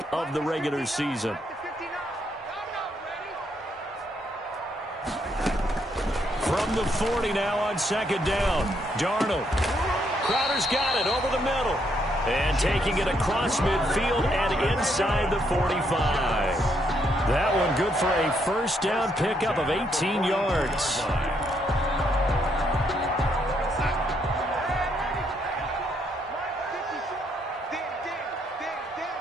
of the regular season. From the 40 now on second down. Darnold. Crowder's got it over the middle. And taking it across midfield and inside the 45. That one good for a first down pickup of 18 yards.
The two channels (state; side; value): normal; both; correlation 0.74